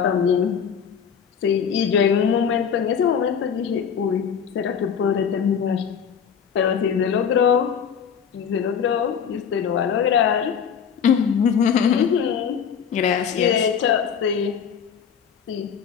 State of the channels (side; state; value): right; quieter; 7.4 dB